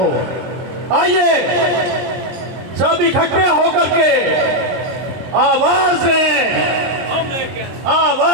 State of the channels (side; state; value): left; late; 23 ms